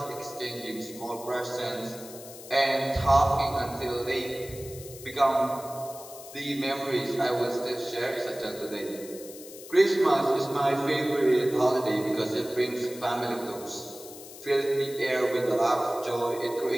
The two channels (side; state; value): left; noise; hiss, 16 dB below the sound